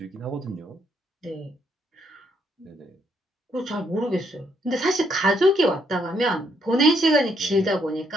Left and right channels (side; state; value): both; normal; correlation 0.73